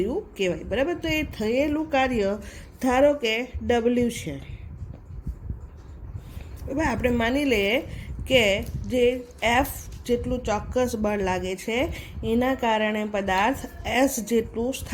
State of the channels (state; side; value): identical; both; correlation 1.00